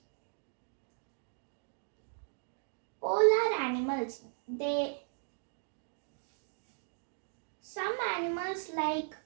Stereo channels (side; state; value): left; silent; digital silence